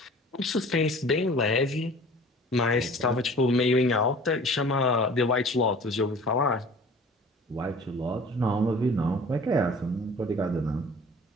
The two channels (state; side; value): normal; both; correlation 0.46